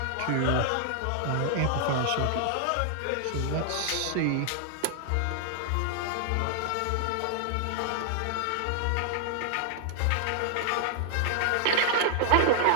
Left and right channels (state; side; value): different; both; correlation -0.01